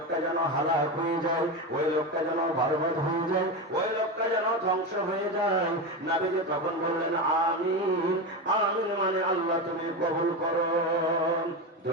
যেন হালাক হয়ে যায়, ওই লোকটা যেন বরবাদ হয়ে যায়, ওই লোকটা যেন ধ্বংস হয়ে যায়। নবীজি তখন বললেন আমিন। আমিন মানে আল্লাহ তুমি কবুল করো।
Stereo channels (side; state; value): both; normal; correlation 0.17